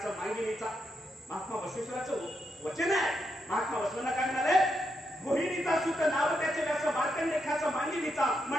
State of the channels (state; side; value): normal; both; correlation 0.82